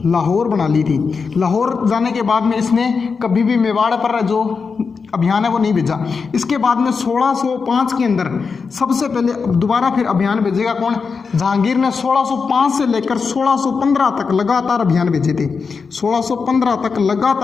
लाहौर बना ली थी। लाहौर जाने के बाद में इसने कभी भी मेवाड़ पर जो अभियान है वो नहीं भेजा। इसके बाद में 1605 के अंदर सबसे पहले दोबारा फिर अभियान भेजेगा कौन, जहांगीर ने 1605 से लेकर 1615 तक लगातार अभियान भेजे थे। 1615 तक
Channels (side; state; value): right; quieter; 5.2 dB